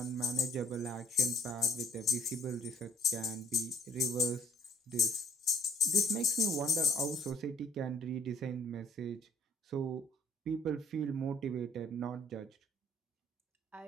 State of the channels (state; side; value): normal; both; correlation 0.60